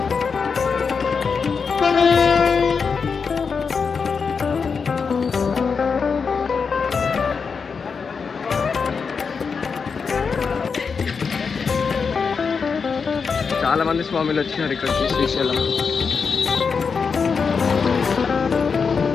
చాలా మంది స్వామిలు వచ్చినారు ఇక్కడికి శ్రీశైలం.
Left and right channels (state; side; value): quieter; right; 5.5 dB